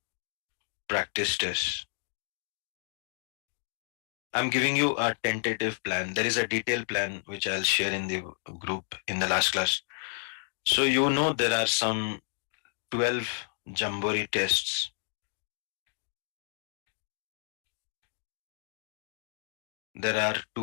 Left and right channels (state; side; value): silent; right; 57 dB below the other